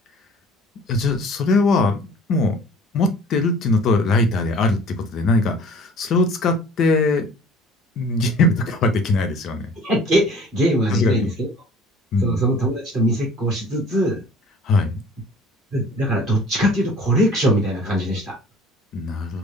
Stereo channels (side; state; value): both; normal; correlation 0.48